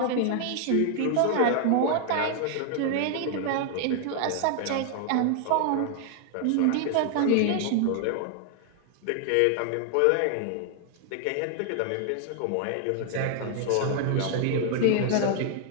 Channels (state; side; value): different; both; correlation 0.00